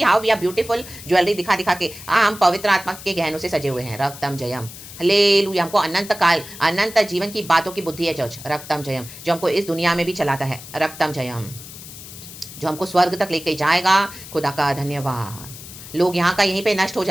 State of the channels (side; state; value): left; noise; hiss, 14 dB below the sound